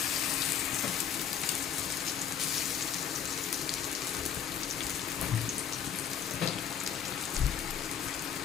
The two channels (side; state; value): right; quieter; 8.5 dB